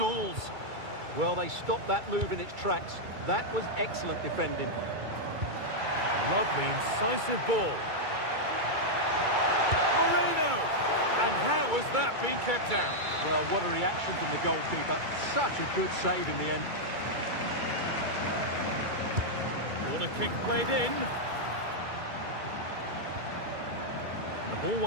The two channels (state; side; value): late; left; 2.3 ms